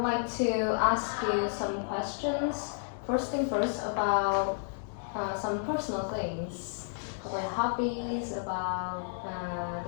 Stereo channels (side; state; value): right; silent; 57 dB below the other